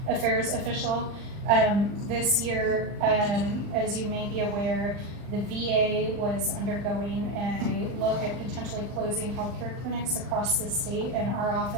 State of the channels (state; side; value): late; left; 39 ms